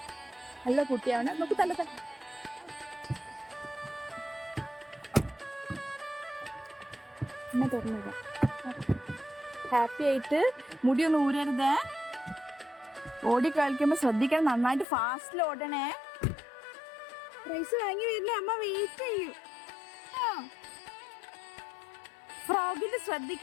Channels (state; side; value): drops out; right; at 14.9 s